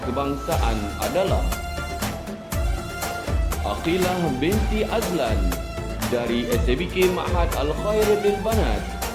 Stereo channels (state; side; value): identical; both; correlation 1.00